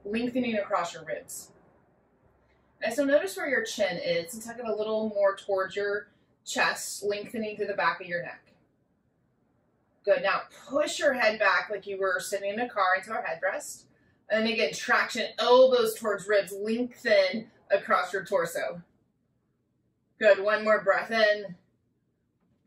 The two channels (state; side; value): identical; both; correlation 1.00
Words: lengthening across your ribs. And so notice where your chin is and tuck it a little more towards your chest, lengthening through the back of your neck. Good. Now push your head back like you were sitting in a car into our headrest. And then again, traction, elbows towards ribs, lengthen across your torso. Good. One more breath in,